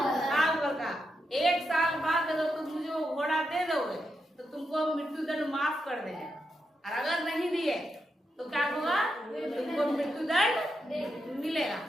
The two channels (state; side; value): normal; both; correlation 0.85